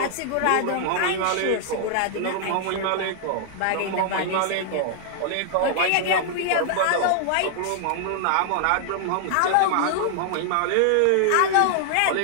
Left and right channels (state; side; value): different; both; correlation -0.01